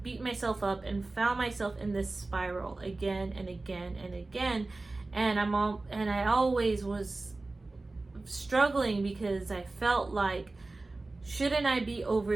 beat myself up and found myself in this spiral again and again and again, and I always was struggling because I felt like, shouldn't I be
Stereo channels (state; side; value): quieter; left; 3.2 dB